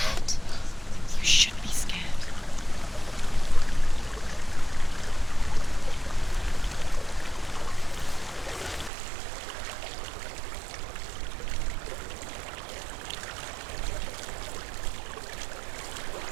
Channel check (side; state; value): left; drops out; at 8.9 s